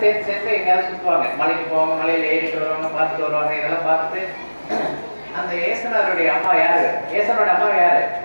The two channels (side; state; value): both; inverted; correlation -1.00